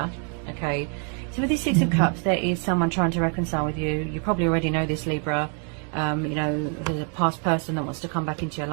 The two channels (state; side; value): quieter; left; 38.6 dB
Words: Okay. So with this Six of Cups, there is someone trying to reconcile with you. You probably already know this, Libra. You know, there's a past person that wants to come back into your